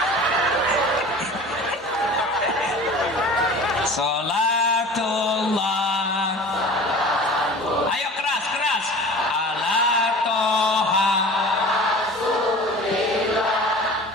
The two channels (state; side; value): normal; both; correlation 0.40